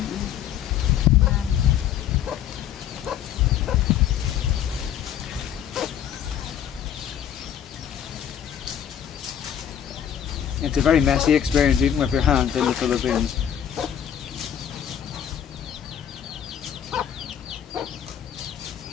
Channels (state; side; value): quieter; right; 9.6 dB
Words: It's a very messy experience eating with your hands in the Philippines.